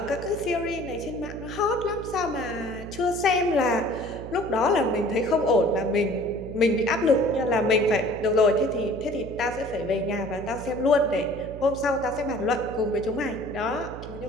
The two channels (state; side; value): noise; right; hum, 12 dB below the sound